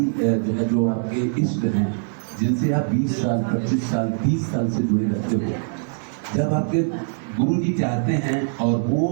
जो है जो आपके इष्ट हैं, जिनसे आप 20 साल 25 साल 30 साल से जुड़े रहते हो, जब आपके गुरु जी चाहते हैं और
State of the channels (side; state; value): left; silent; 64 dB below the other